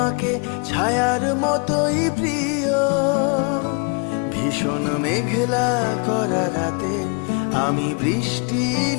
ছায়ার মতোই প্রিয়। ভীষণ মেঘলা করা রাতে আমি বৃষ্টি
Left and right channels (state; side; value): quieter; right; 34.6 dB